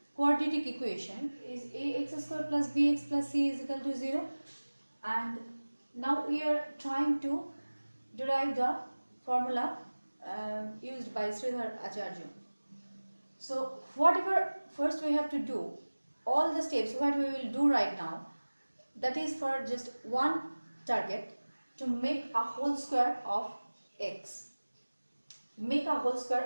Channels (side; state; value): both; inverted; correlation -1.00